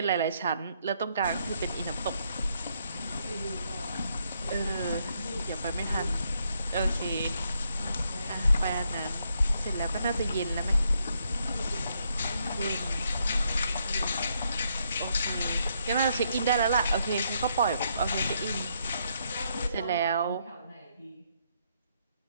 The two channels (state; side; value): inverted; both; correlation -0.75